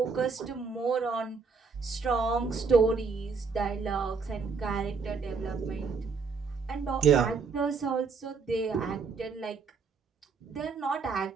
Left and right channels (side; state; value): left; quieter; 5.0 dB